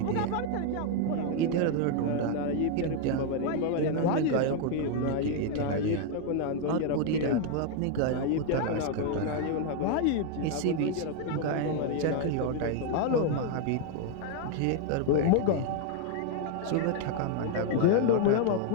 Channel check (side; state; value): both; different; correlation 0.00